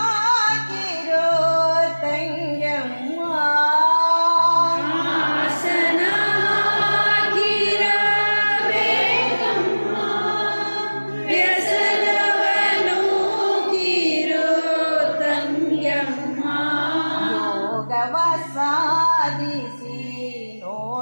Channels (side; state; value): both; inverted; correlation -1.00